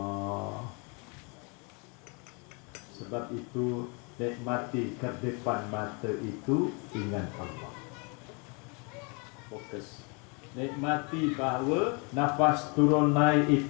Sebab itu nikmati kedipan mata itu ingat Allah. Fokus. Nikmati bahawa nafas turun naik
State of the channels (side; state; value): right; quieter; 33.2 dB